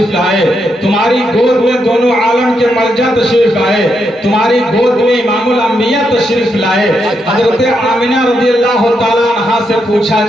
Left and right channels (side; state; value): both; normal; correlation 0.81